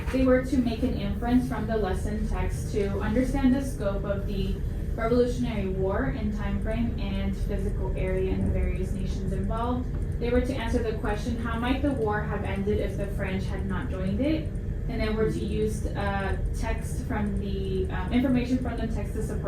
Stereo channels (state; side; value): identical; both; correlation 1.00